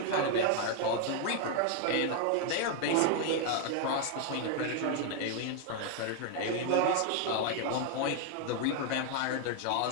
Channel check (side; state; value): both; different; correlation 0.00